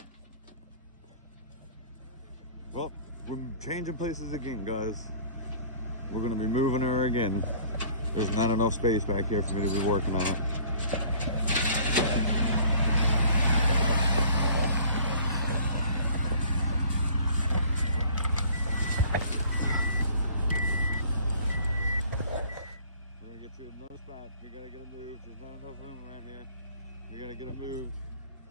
Well, we're changing places again, guys. We're gonna be moving her again. There's not enough space back here for me to be working on it. We're gonna get to another spot. We gotta get her moved. There's not enough room around here. We gotta get her moved.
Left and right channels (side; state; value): both; inverted; correlation -0.51